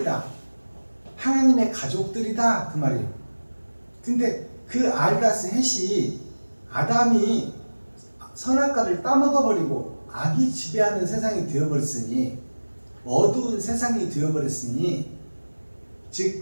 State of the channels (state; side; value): inverted; both; correlation -1.00